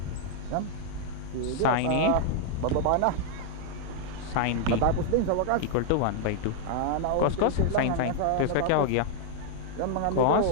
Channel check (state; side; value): different; both; correlation -0.01